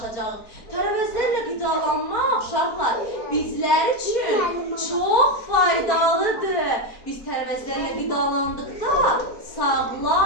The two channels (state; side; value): late; right; 4.4 ms